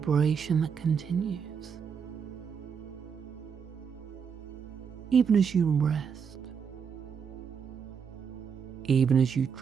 that continues, even as you rest, even as you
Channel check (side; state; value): left; quieter; 6.7 dB